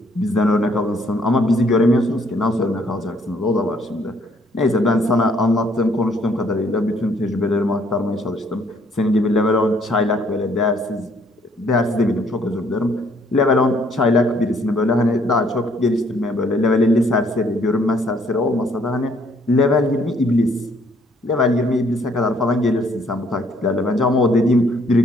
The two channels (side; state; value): both; normal; correlation 0.65